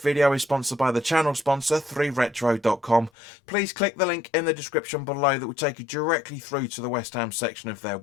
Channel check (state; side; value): drops out; right; at 3.1 s